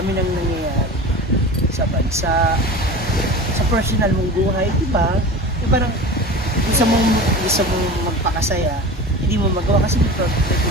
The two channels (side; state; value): both; normal; correlation 0.33